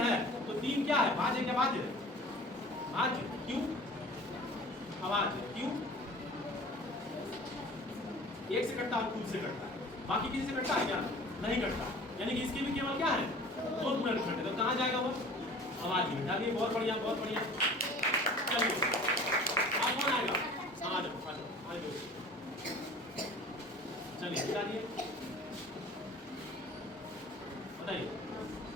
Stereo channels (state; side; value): normal; both; correlation 0.44